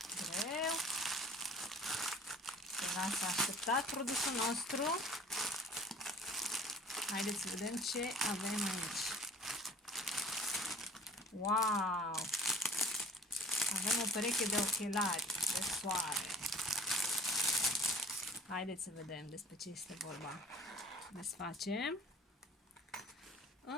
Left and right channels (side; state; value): both; normal; correlation 0.48